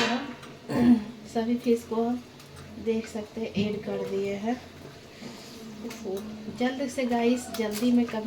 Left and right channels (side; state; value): both; identical; correlation 1.00